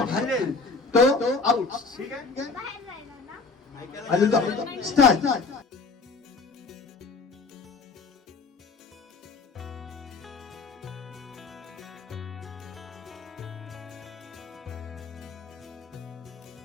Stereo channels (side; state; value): right; quieter; 4.2 dB